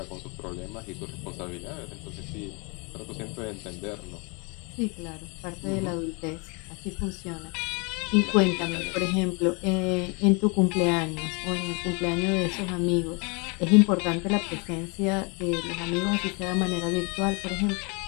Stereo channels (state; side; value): quieter; right; 31.8 dB